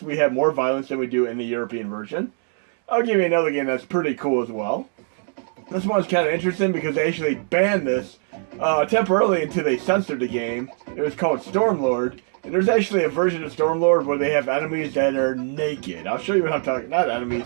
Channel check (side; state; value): left; silent; 59 dB below the other